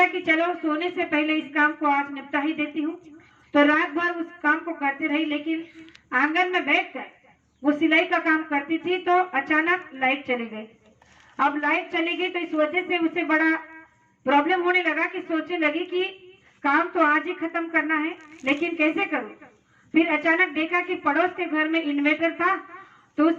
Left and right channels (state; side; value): identical; both; correlation 1.00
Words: कि चलो सोने से पहले इस काम को आज निपटा ही देती हूँ। तो रात भर उस काम को करती रही, लेकिन आंगन में बैठकर वो सिलाई का काम करती थी तो अचानक लाइट चली गई। अब लाइट चली गई तो इस वजह से उसे बड़ा प्रॉब्लम होने लगा कि सोचने लगी कि काम तो आज ही खत्म करना है, लेकिन कैसे करूं। फिर अचानक देखा कि पड़ोस के घर में इन्वर्टर था, तो